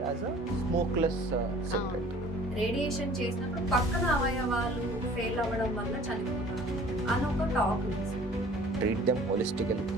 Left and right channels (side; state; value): both; normal; correlation 0.50